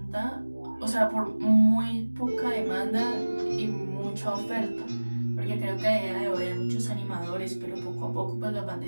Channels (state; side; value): inverted; both; correlation -1.00